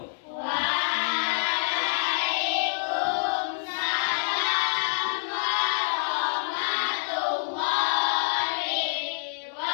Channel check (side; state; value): right; silent; 60 dB below the other